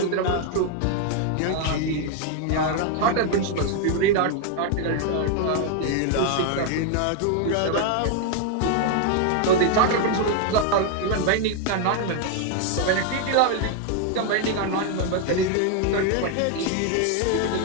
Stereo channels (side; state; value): both; different; correlation 0.00